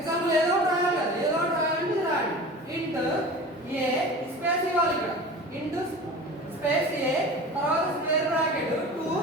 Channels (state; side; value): normal; both; correlation 0.36